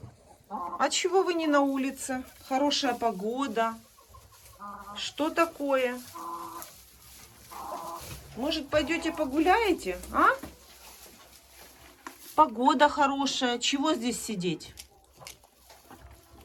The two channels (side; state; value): both; identical; correlation 1.00